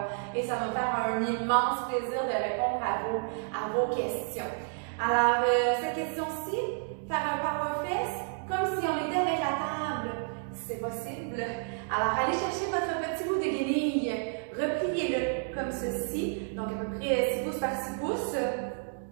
et ça va me faire un immense plaisir de répondre à vos questions. Alors, cette question-ci, faire un power fest comme si on était avec la table. C'est possible. Alors, allez chercher votre petit bout de guenille, repliez-le comme ceci, donc à peu près 6 pouces par 6 pouces.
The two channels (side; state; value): left; silent; digital silence